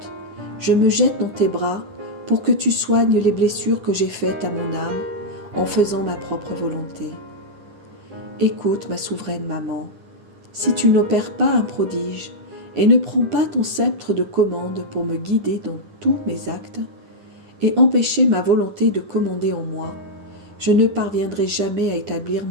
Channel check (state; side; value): late; left; 10 ms